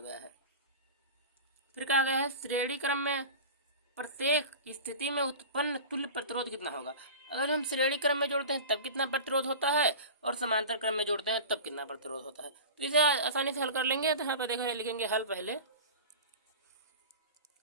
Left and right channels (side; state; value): both; inverted; correlation -0.32